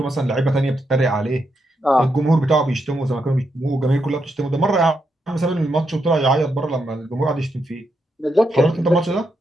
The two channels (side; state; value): both; normal; correlation 0.82